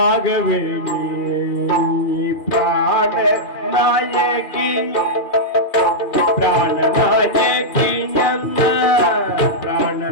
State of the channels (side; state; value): right; late; 2.4 ms